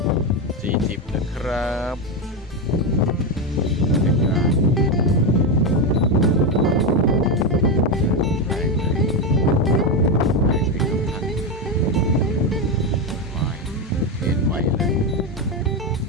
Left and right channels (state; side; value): normal; both; correlation 0.10